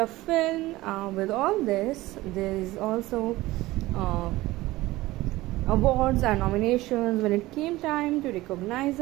film. With all this, there is also awards and nominations when it came time to recognize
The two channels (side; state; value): left; quieter; 18.3 dB